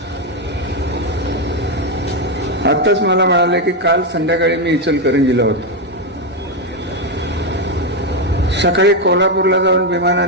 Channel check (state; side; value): normal; both; correlation 0.06